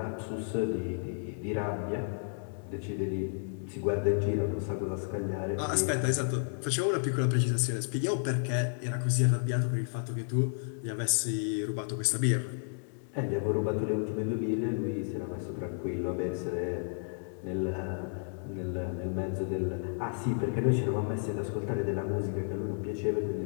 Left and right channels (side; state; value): right; silent; digital silence